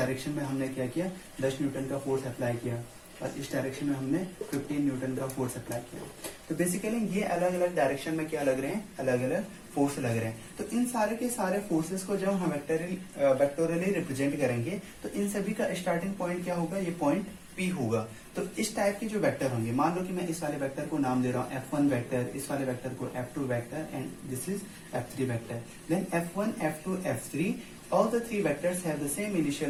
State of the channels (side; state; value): both; identical; correlation 1.00